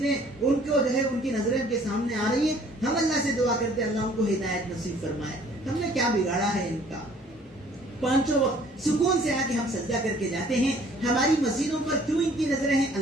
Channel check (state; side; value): normal; both; correlation 0.56